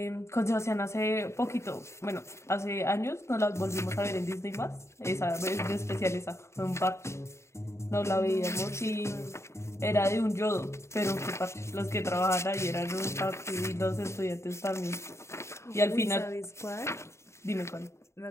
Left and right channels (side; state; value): right; late; 0.13 ms